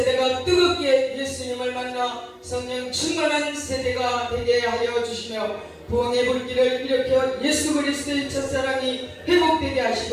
뜨겁게 예수님을 만나 성령 충만한 세대가 되게 하여 주시며 부흥의 불길을 일으켜 예수 그리스도의 첫사랑이 회복되게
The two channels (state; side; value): identical; both; correlation 1.00